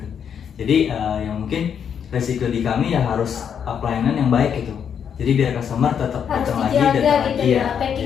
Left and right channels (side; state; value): right; quieter; 7.8 dB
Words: Jadi yang mungkin resiko di kami ya harus pelayanan yang baik gitu. Jadi biar customer tetap Harus datang lagi, dijaga datang gitu lagi ya.